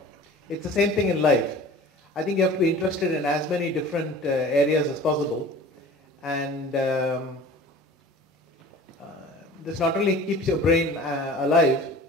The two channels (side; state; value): both; normal; correlation 0.43